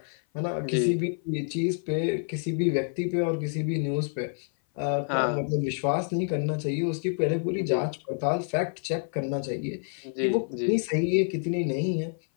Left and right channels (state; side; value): silent; right; 56 dB below the other